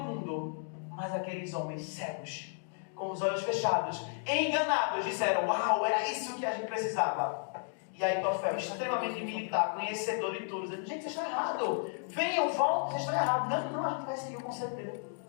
mas aqueles homens cegos, com os olhos fechados, enganados, disseram, uau, era isso que a gente precisava. E aí Aitofel, extremamente militar, conhecedor de tudo, dizendo, gente, vocês estão errados, venham, voltem, vocês estão errados. Não, a gente vai seguir o conselho dele.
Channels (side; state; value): right; silent; 56 dB below the other